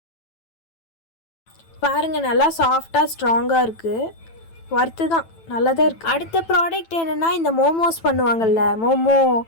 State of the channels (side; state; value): right; late; 9.0 ms